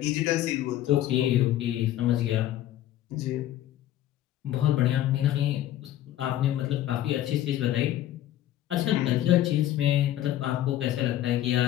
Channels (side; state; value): right; quieter; 13.0 dB